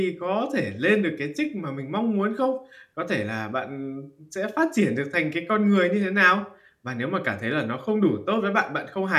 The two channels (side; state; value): both; identical; correlation 1.00